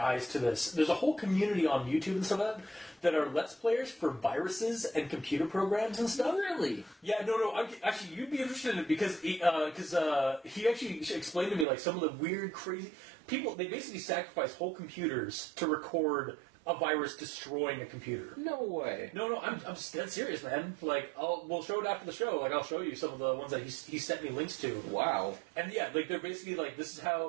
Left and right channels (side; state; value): left; drops out; at 11.7 s